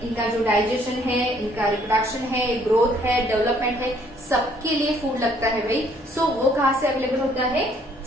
इनका जो digestion है, इनका reproduction है, growth है, development है, सबके लिए food लगता है भाई. so वो कहाँ से available होता है?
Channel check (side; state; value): both; normal; correlation 0.64